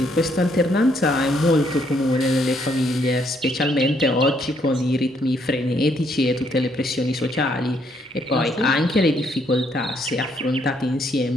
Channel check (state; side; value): normal; both; correlation 0.71